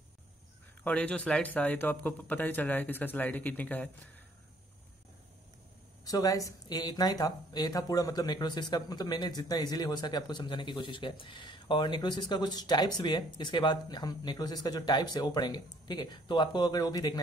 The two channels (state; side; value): normal; both; correlation 0.62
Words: और ये जो स्लाइड था, ये तो आपको पता ही चल रहा है किसका स्लाइड है, कितने का है। सो गाइस, ये इतना ही था। ये था पूरा मतलब नेक्रोसिस का, मतलब मैंने जितना इजीली हो सके आपको समझाने की कोशिश किया। और नेक्रोसिस का कुछ टाइप्स भी है, इसके बाद हम नेक्रोसिस का जो टाइप्स है वो पढ़ेंगे, ठीक है। तो आपको अगर वो भी देखना